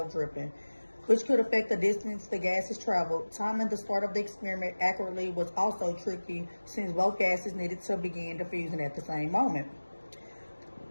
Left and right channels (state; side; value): inverted; both; correlation -1.00